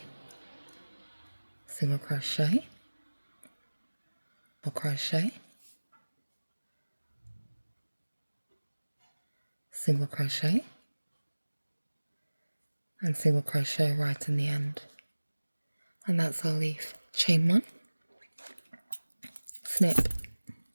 single crochet, double crochet, single crochet, and single crochet right in the end. And that's our leaf. Chain 1, snip,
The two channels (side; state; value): both; inverted; correlation -1.00